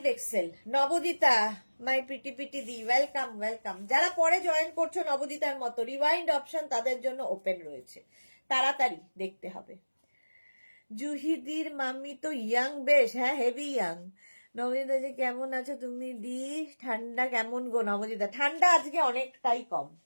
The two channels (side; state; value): both; inverted; correlation -1.00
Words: নবদিতা মাই পিটি পিটি দি, ওয়েলকাম ওয়েলকাম। যারা পরে জয়েন করছো নবদিতার মতো, রিওয়াইন্ড অপশন তাদের জন্য ওপেন রয়েছে, তাড়াতাড়ি দেখতে হবে। জুহিদির মাম্মি তো ইয়াং বেশ, হ্যাঁ হেভি ইয়াং। নবদিতা যে কেমন আছো তুমি দি, ঠান্ডা কেমন গো নবদিতা? ঠান্ডা আজকে অনেকটাই কম,